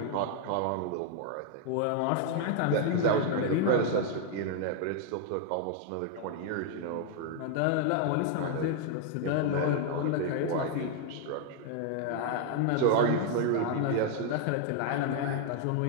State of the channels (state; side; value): different; both; correlation 0.00